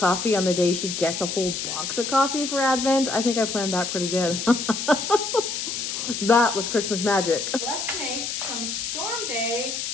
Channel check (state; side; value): noise; left; hiss, 4 dB below the sound